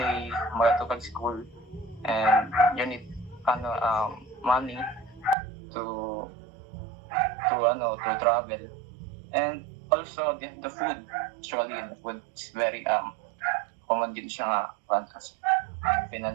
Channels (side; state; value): left; drops out; at 5.4 s